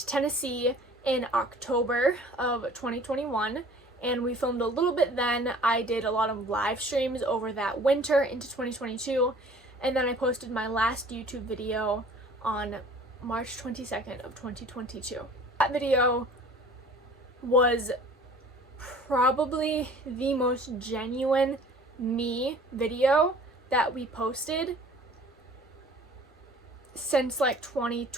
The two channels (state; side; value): normal; both; correlation 0.49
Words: Tennessee in October of 2021 and we filmed a little bit then. I did a lot of live streams over that winter into 2022, and then I posted my last YouTube video on March 22nd of 2022. That video was probably the most genuine me video that we posted since like